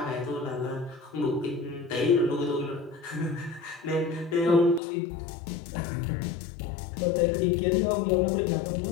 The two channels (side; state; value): right; drops out; at 4.8 s